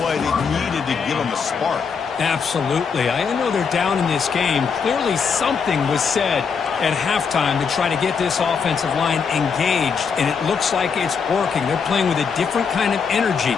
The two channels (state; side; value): quieter; right; 6.0 dB